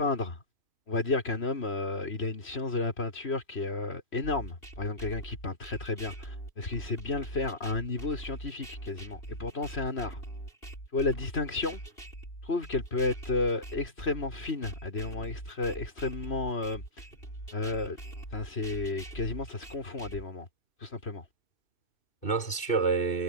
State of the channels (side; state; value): right; late; 2.6 ms